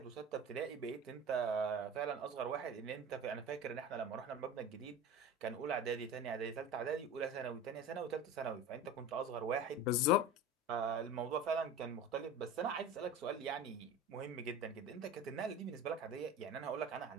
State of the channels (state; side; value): normal; both; correlation 0.33